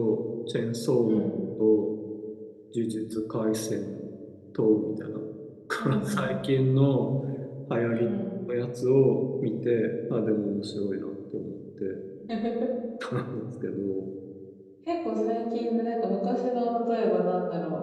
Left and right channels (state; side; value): identical; both; correlation 1.00